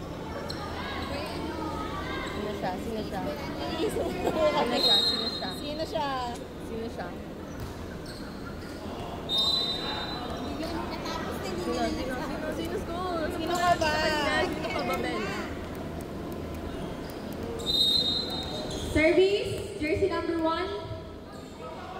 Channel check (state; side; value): identical; both; correlation 1.00